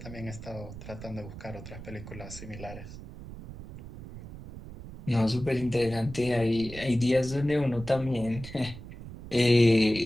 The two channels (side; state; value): right; noise; rumble, 13 dB below the sound